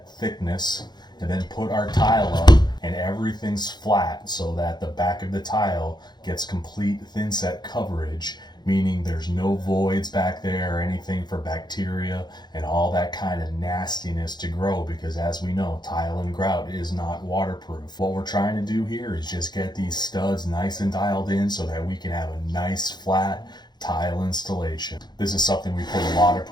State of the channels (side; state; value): right; late; 0.21 ms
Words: thickness and then put our tile up and everything's flat so that the back of the tile gets complete thin set coverage, meaning there's no voids back there or anything for bacteria and all that kind of nastiness to grow, because as we know, tile and grout is not waterproof. What we're trying to do here is just get these studs nice and dialed in so that we can have a nice flat tile installation. This is something we put a lot of